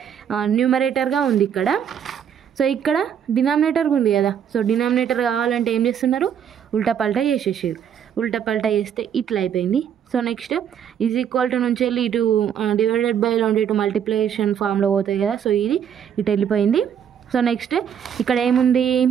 న్యూమరేటర్గా ఉంది ఇక్కడ. సో ఇక్కడ డినామినేటర్ ఉంది కదా, సో డినామినేటర్ కావాలంటే ఏం చేస్తున్నారు, ఉల్టా పల్టా చేసేసారు. ఉల్టా పల్టా చేస్తే ఇట్లా అయిపోయింది. So next is equal to నుంచి వెళ్ళి ఇటు డివైడెడ్ బై లో ఇటు మల్టిప్లికేషన్ ఫామ్లో పోతాయి కదా, సో ఇది ఇటు వెళ్ళిపోయింది. సో నెక్స్ట్ ఇక్కడ ఏముంది,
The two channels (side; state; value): left; quieter; 8.6 dB